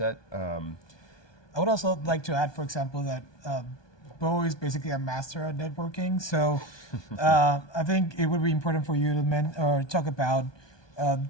I would also like to add, for example, that Bo is basically a master at networking. So I think it would be important for you to talk about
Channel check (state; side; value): late; right; 1.2 ms